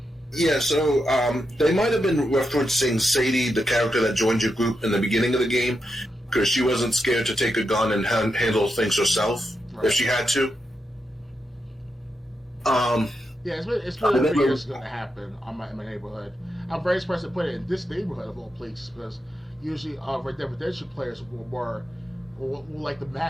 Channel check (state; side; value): normal; both; correlation 0.85